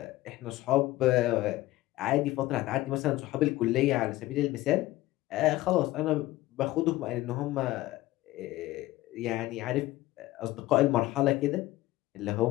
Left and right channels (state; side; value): quieter; right; 17.2 dB